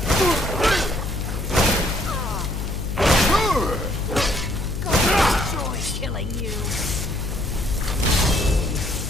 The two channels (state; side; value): noise; left; hum, 5 dB below the sound